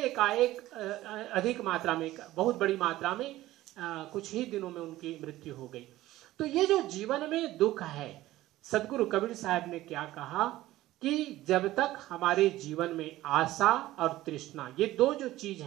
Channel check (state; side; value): quieter; left; 16.0 dB